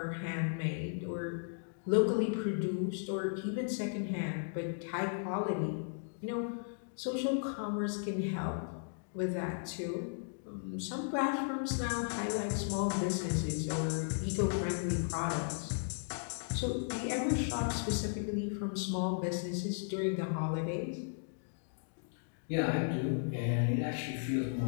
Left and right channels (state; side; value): silent; right; digital silence